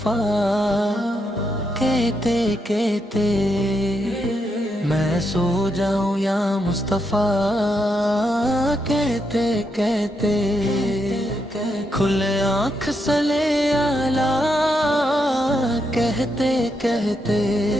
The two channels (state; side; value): normal; both; correlation 0.81